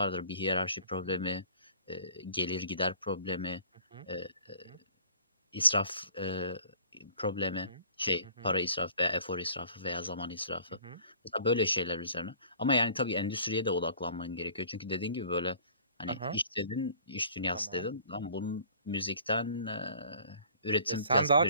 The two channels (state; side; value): inverted; both; correlation -0.51